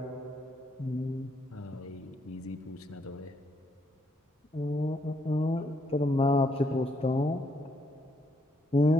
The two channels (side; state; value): both; normal; correlation 0.74